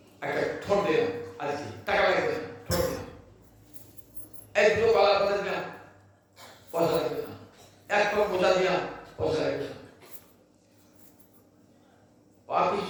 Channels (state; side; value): identical; both; correlation 1.00